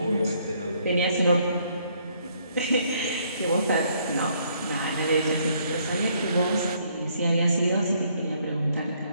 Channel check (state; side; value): inverted; both; correlation -0.68